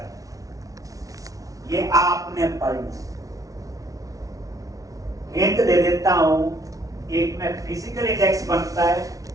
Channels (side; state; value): left; late; 0.17 ms